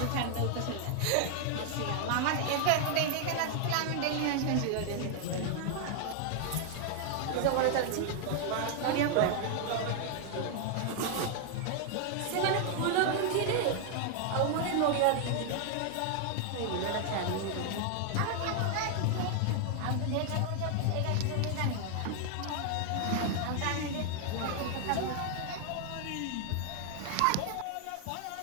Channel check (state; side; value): different; both; correlation 0.00